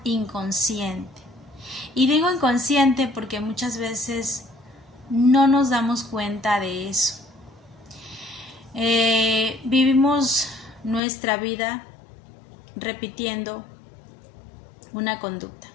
inconsciente. Y digo inconsciente porque muchas veces no nos damos cuenta de eso. Vivimos nuestra vida repitiendo una conducta.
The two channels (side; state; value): right; drops out; at 11.0 s